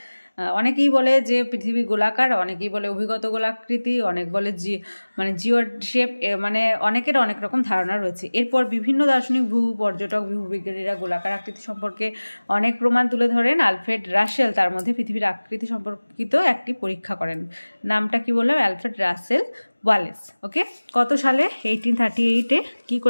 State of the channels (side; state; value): both; inverted; correlation -1.00